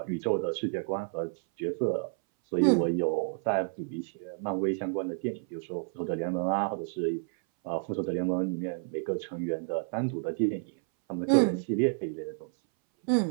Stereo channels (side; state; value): left; silent; 57 dB below the other